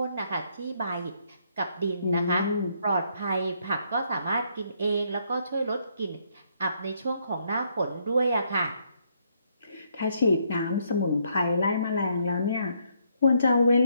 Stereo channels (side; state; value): both; inverted; correlation -0.73